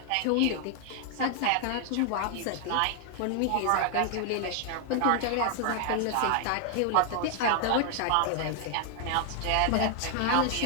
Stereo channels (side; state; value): both; different; correlation 0.00